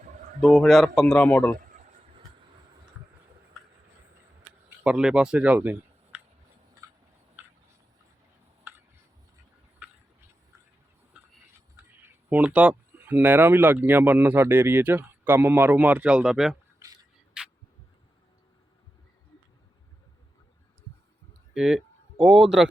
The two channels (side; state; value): both; normal; correlation 0.90